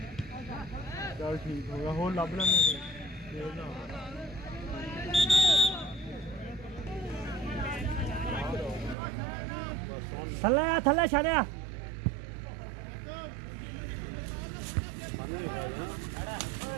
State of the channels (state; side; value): drops out; left; at 9.0 s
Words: चल ठीक होगा हो लभ लेने थल्ले थल्ले छड़िया